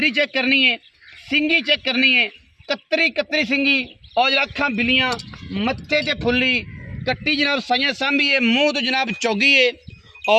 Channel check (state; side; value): identical; both; correlation 1.00